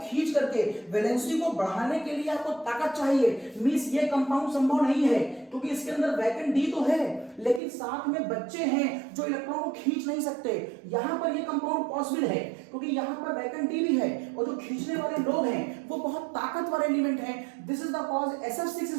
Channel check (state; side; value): drops out; left; at 7.6 s